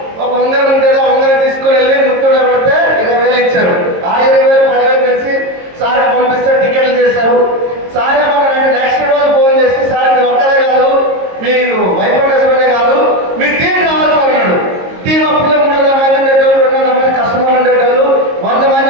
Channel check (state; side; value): late; left; 22 ms